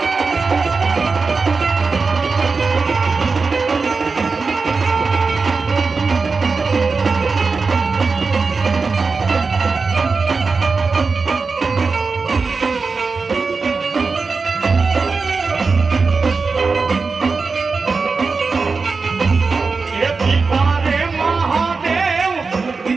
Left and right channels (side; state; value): left; quieter; 4.5 dB